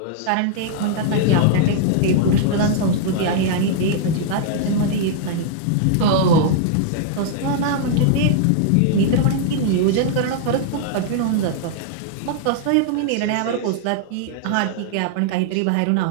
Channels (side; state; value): both; different; correlation -0.01